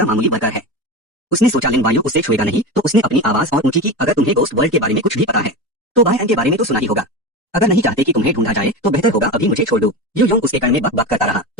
मामूली वर्कर है। उसने सोचा लिन वायु उससे छुएगा नहीं, तो उसने अपनी आवाज और ऊंची की, अगर तुम्हें गोस्ट वर्ल्ड के बारे में कुछ भी पता है तो बाय एंड के बारे में तो सुना ही होगा। अगर नहीं चाहते कि तुम्हें ढूंढा जाए तो बेहतर होगा अभी मुझे छोड़ दो। यू योंग उसके कान में बक बक करता रहा।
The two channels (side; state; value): both; normal; correlation 0.24